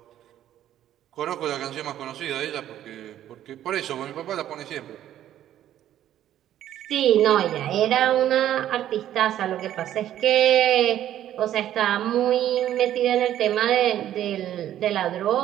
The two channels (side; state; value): left; quieter; 11.8 dB